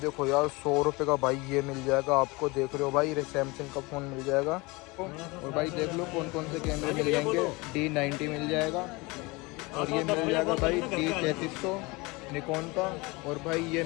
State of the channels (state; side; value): quieter; right; 24.8 dB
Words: देखो यार 100 रुपये का भाई ये मिल जाएगा आपको। देख रहे हो भाई सैमसंग का फ़ोन मिल जाएगा। और भाई देख लो कौन कौन से कैमरे मिल जाएंगे। D90 मिल जाएगा, और ये मिल जाएगा भाई D3300 निकॉन का। और भाई ये